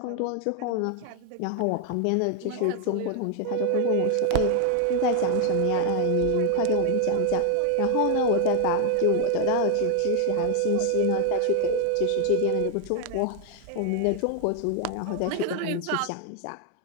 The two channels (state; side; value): different; both; correlation 0.00